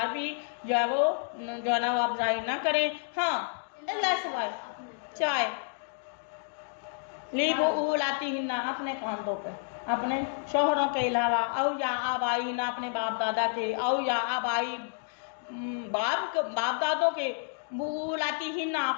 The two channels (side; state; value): right; silent; digital silence